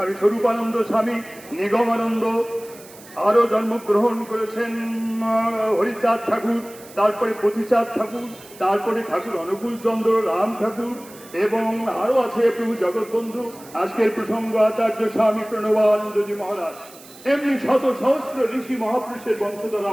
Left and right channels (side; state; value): right; noise; hiss, 21 dB below the sound